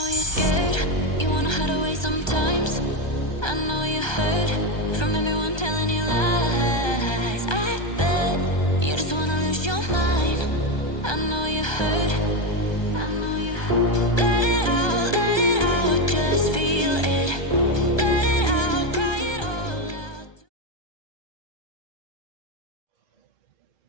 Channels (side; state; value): right; late; 1.2 ms